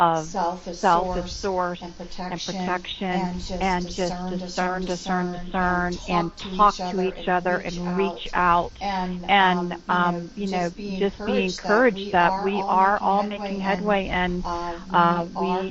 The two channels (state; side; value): identical; both; correlation 1.00